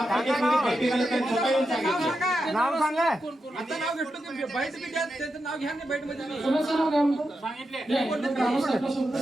बैठक आले त्यांनी स्वतः येऊन सांगितलं. नाव सांगा आता नाव घेतलं की बाईट बी द्या त्याचं नाव घ्या ना बाईट मध्ये कोणाचं नाव काय म्हणतो ग्रामस्थांपासून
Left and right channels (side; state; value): both; normal; correlation 0.87